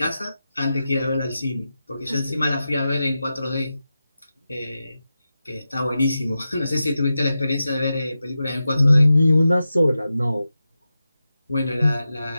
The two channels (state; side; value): inverted; both; correlation -0.92